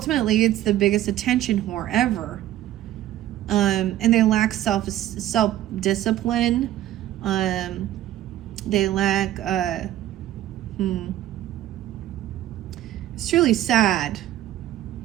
it's the biggest attention whore ever. And they lack self-discipline. They lack, it's truly sad,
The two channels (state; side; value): quieter; left; 13.2 dB